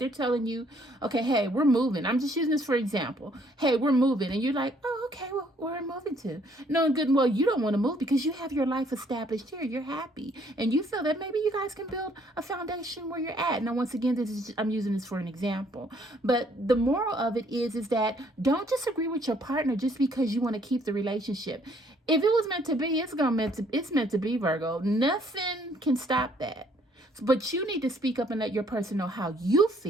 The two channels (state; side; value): normal; both; correlation 0.64